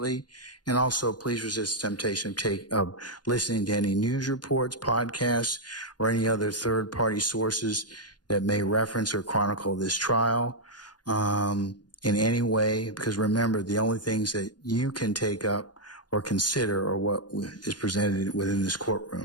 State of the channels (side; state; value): right; late; 0.70 ms